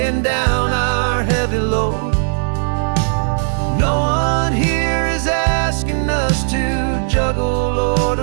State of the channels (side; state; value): left; silent; digital silence